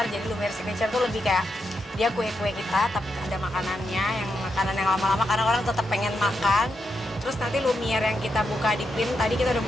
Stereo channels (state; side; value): normal; both; correlation 0.84